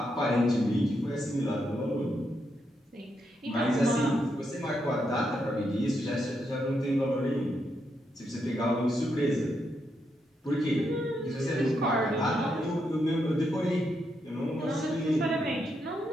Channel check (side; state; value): both; normal; correlation 0.81